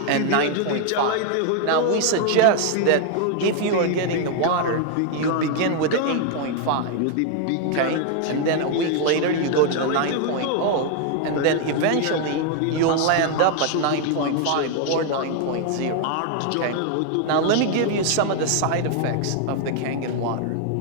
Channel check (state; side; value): different; both; correlation 0.00